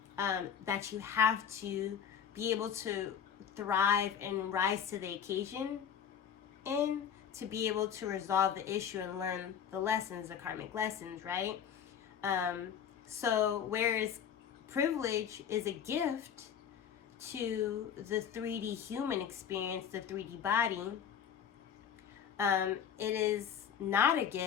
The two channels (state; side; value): quieter; right; 8.3 dB